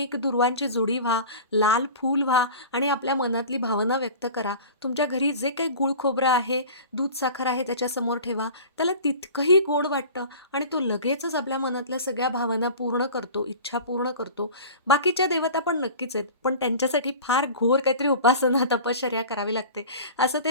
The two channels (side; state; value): both; inverted; correlation -0.38